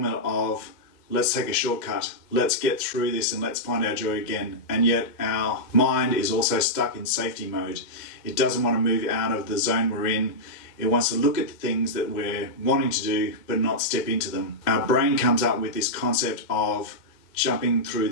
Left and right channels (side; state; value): right; late; 2.0 ms